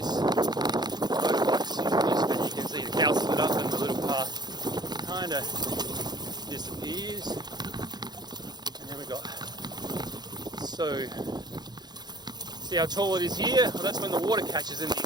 Motorbikes using this, but you can see the cow split up and the little path kind of disappears. And then we got, so see how tall it is here? Well, that's when the water catches in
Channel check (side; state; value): left; late; 0.20 ms